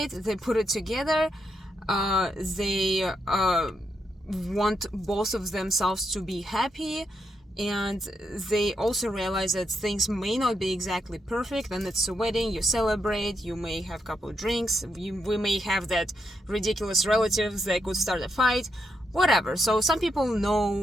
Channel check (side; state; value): both; normal; correlation 0.81